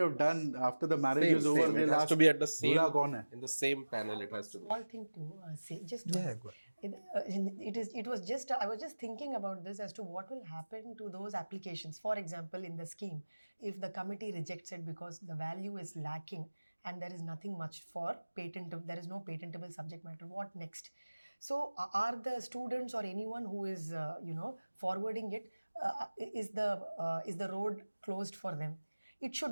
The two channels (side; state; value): both; inverted; correlation -1.00